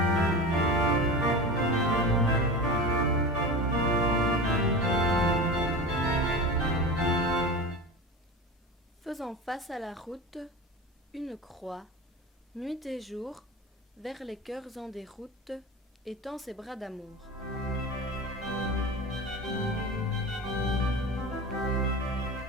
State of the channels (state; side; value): normal; both; correlation 0.29